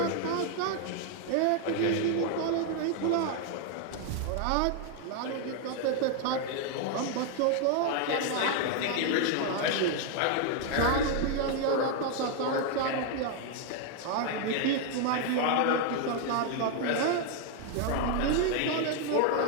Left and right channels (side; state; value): both; different; correlation 0.00